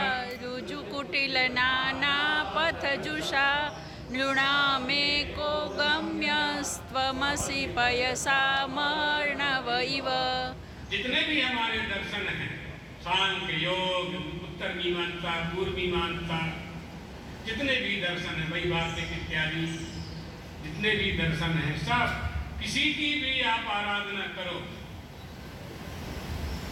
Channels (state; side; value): identical; both; correlation 1.00